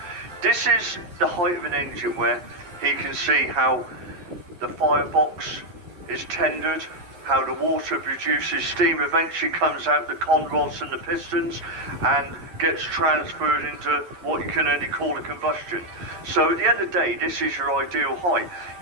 this is the height of an engine where he can see how the firebox is tendered, how the water produces steam, eventually comes out the con rods and the pistons and gets transferred into what you can only call a combustion. So at the end of the day, this is your ideal height.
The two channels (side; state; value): left; late; 11 ms